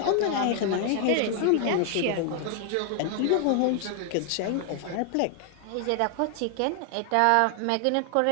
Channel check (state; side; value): different; both; correlation 0.00